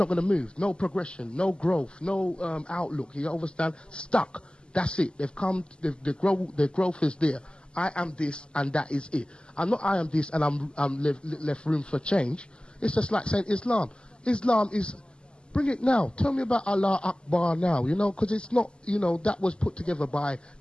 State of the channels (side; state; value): right; late; 0.050 ms